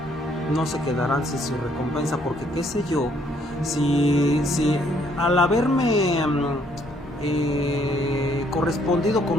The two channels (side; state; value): both; normal; correlation 0.67